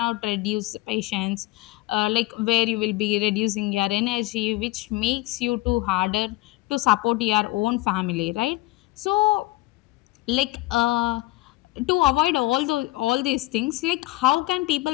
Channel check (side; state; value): right; quieter; 19.3 dB